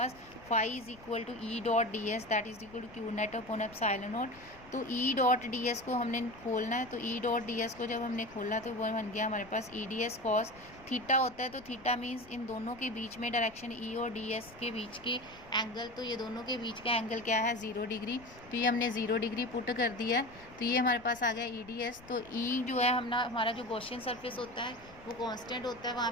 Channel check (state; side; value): noise; left; rumble, 22 dB below the sound